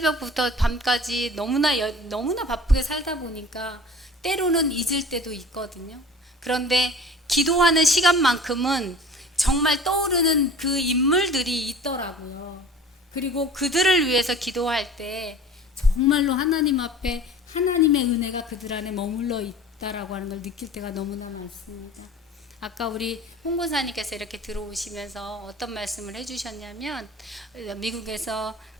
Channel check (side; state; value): both; normal; correlation 0.43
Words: 밤까지 너무나 바쁘게 살다 보니까 때로는 잊을 때도 있거든요. 그런데 기도하는 시간만큼은 정말 떠오르는 그 인물들이 있더라고요. 그리고 그들을 위해서 기도할 때 정말로 하나님 앞에 하나님의 은혜가 그들 안에 머물러 있다라고 하는 걸 느낄 때가 너무나 많습니다. 아까 우리 홍보사님께서 이렇게 들어오시면서 어떤 말씀을 해주셨냐면 미국에서